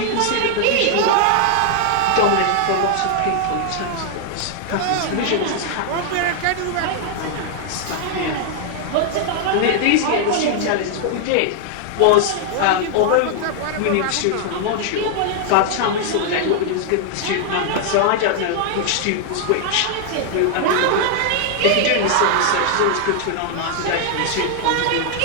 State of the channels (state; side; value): different; both; correlation 0.00